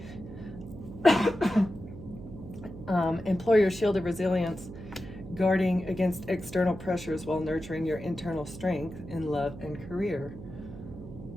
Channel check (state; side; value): noise; right; hum, 13 dB below the sound